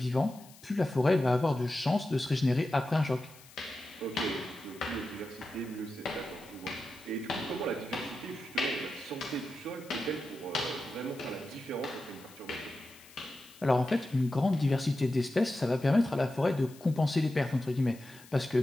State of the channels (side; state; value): left; noise; hiss, 22 dB below the sound